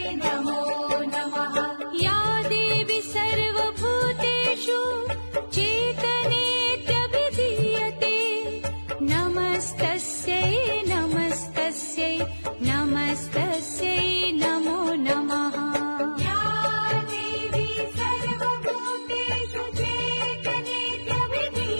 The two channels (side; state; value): both; inverted; correlation -1.00